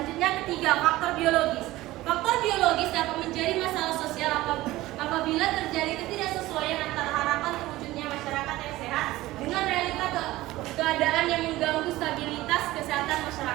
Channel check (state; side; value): quieter; left; 17.4 dB